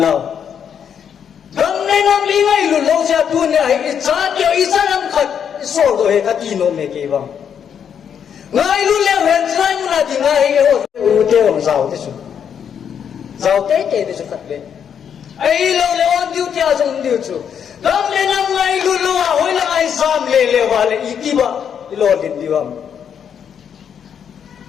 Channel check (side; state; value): right; quieter; 8.0 dB